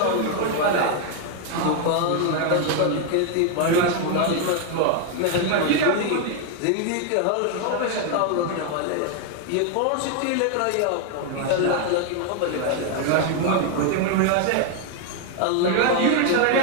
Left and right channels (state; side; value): different; both; correlation 0.01